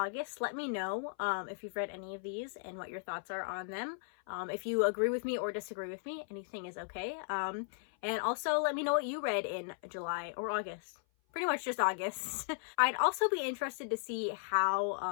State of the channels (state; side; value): silent; right; 54 dB below the other